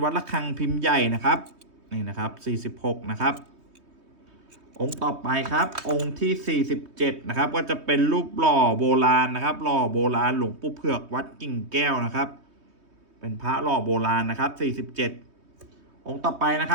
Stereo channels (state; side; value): late; left; 3.2 ms